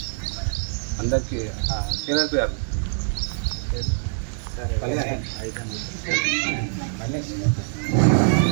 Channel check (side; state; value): left; silent; 62 dB below the other